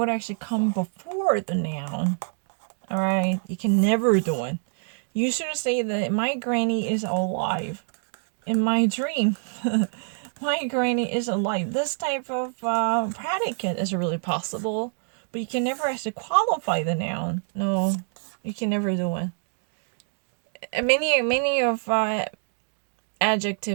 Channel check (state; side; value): silent; left; 61 dB below the other